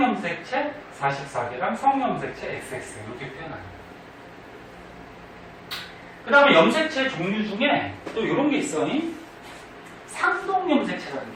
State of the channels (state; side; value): identical; both; correlation 1.00